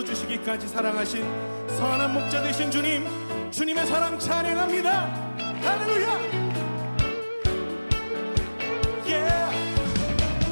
사랑하신 선한 목자 되신 주님, 주님의 사랑 찬양합니다. 할렐루야.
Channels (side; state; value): both; inverted; correlation -1.00